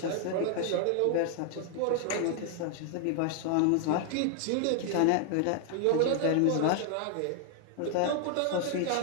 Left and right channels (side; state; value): both; different; correlation 0.00